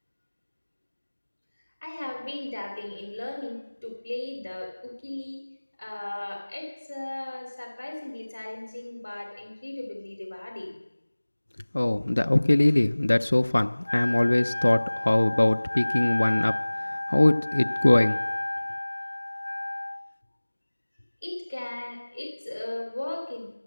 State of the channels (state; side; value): inverted; both; correlation -1.00